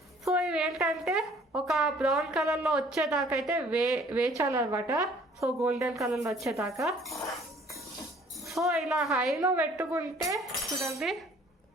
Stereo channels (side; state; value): both; normal; correlation 0.56